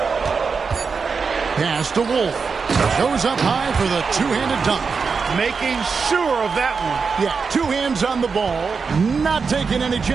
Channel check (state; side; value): quieter; left; 5.2 dB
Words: Pass to Wolf. Goes up high for the 2-handed dunk. Making sure of that one. Yeah, 2 hands on the ball. Not taking any